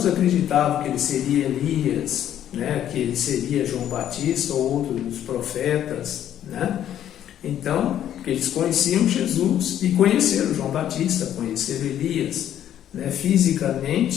acreditavam que ele seria Elias, que ele seria João Batista ou outro dos profetas, Então, porque eles conheciam Jesus e conheceram João Batista, conheceram Elias,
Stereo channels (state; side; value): quieter; right; 10.9 dB